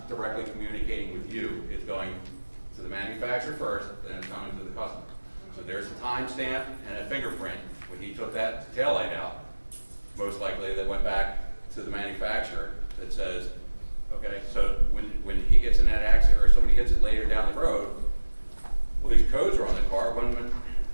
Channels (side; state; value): both; inverted; correlation -1.00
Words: directly communicating with you, it's going to the manufacturer first, then it's coming to the customer. So there's a timestamp and a fingerprint. When he took that taillight out, most likely that went back to the manufacturer that says, okay, so when he gets in that accident or somebody he hits it later down the road, well, these codes are on the car,